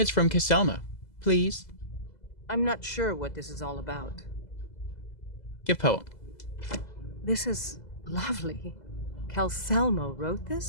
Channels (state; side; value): late; right; 2.0 ms